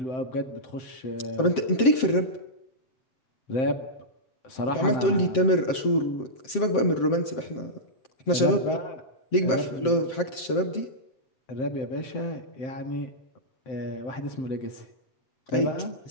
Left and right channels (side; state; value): right; late; 7.6 ms